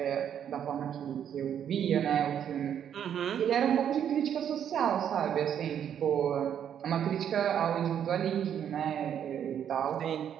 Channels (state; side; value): quieter; left; 9.1 dB